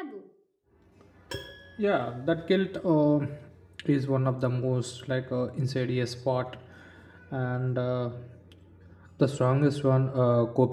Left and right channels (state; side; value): identical; both; correlation 1.00